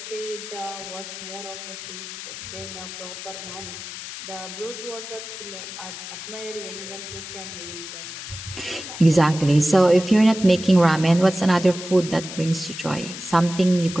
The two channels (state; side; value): noise; left; hiss, 10 dB below the sound